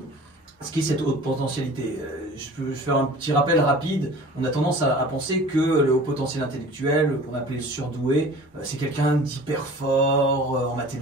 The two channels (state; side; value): normal; both; correlation 0.43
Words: ce qu'est cette haute potentialité. Je peux faire un petit rappel rapide. On a tendance à penser que le haut potentiel intellectuel, qu'on appelle le surdoué, c'est quelqu'un d'hyper fort en